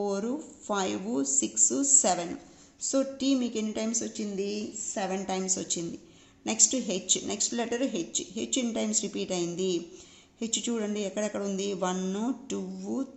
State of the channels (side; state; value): both; identical; correlation 1.00